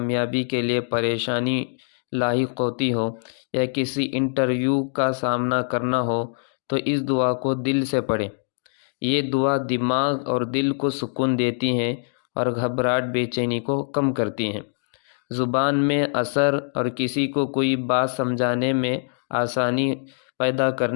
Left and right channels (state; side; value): silent; right; digital silence